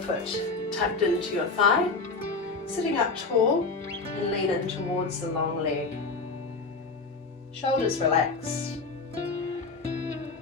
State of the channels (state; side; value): quieter; right; 4.0 dB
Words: tucked into your thigh. Sitting up tall and lean in towards the long leg. Shoulders relaxed.